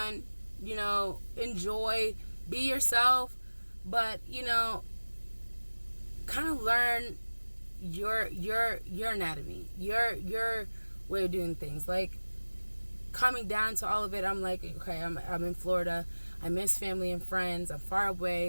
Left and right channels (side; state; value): both; inverted; correlation -1.00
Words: enjoy, be yourself, but kind of learn your anatomy, your way of doing things. Like, coming down to all of it, I'm like, okay, I'm in Florida. I miss family and friends. I'm far